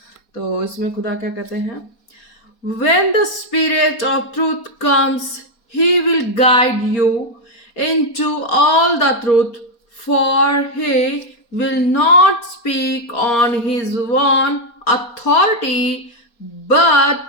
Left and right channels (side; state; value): right; late; 4.2 ms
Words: तो इसमें खुदा क्या कहते हैं? When the Spirit of truth comes, He will guide you into all the truth, for He will not speak on His own authority,